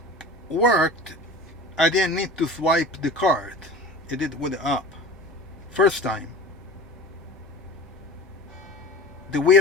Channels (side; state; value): both; normal; correlation 0.37